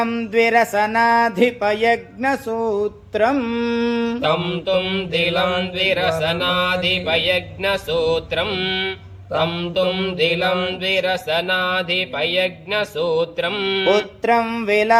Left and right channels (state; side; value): identical; both; correlation 1.00